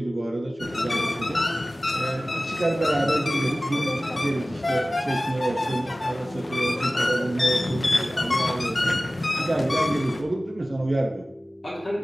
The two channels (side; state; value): both; normal; correlation 0.97